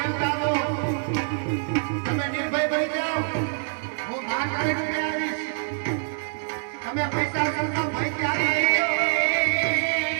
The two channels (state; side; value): silent; left; digital silence